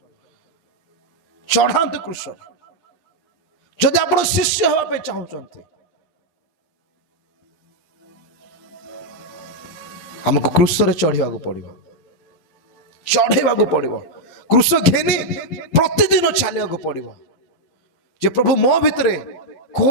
चढ़ातु क्रूस। जदि आप शिष्य हवा पे चाहते हमको क्रूस रे चढ़ा पड़ो, चढ़ेवा पड़ो। क्रूस घेनी प्रतिदिन चलिया पड़ो जे प्रभु मो भितरे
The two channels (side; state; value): right; late; 12 ms